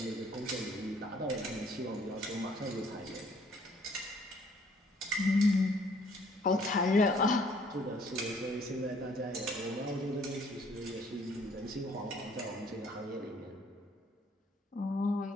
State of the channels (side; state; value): both; normal; correlation 0.61